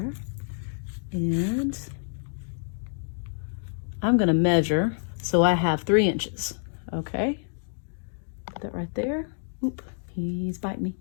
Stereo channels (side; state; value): right; silent; digital silence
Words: And I'm going to measure so I have 3 inches. Okay. Put that right there. Oop, he's biting me.